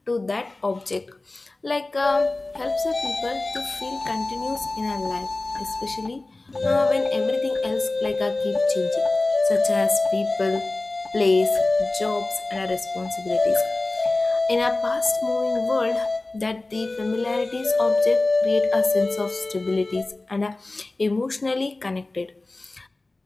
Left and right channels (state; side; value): quieter; right; 3.1 dB